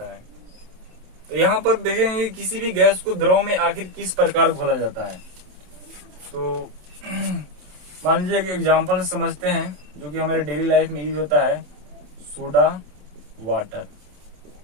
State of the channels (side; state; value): left; late; 27 ms